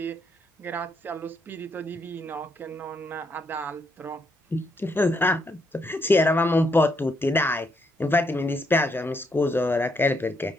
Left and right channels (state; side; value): normal; both; correlation 0.75